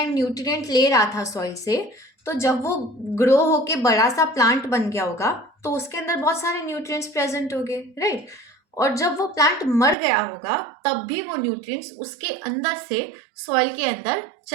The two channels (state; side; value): drops out; left; at 10.0 s